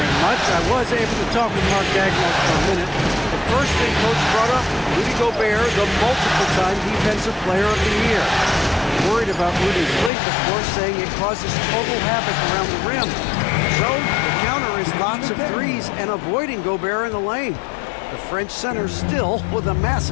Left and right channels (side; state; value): right; drops out; at 10.1 s